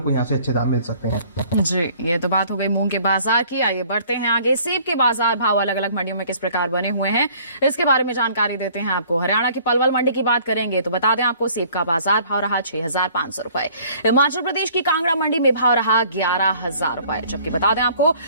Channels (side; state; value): both; inverted; correlation -0.55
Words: को यहाँ से अच्छे दाम मिल सकते हैं। जी, ये तो बात हो गई मूंग के बाजार की। आइए बढ़ते हैं आगे। सेब के बाजार भाव अलग अलग मंडियों में किस प्रकार बने हुए हैं, इसके बारे में जानकारी देते हैं आपको। हरियाणा की पलवल मंडी की बात करेंगे तो बता दें आपको सेब का बाजार भाव रहा 6,500 रुपए। हिमाचल प्रदेश की कांगड़ा मंडी में भाव रहा 11,000 रुपए। जबकि बता दें आपको